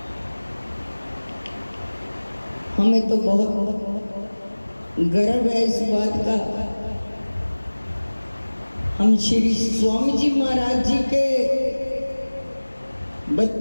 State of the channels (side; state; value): both; inverted; correlation -1.00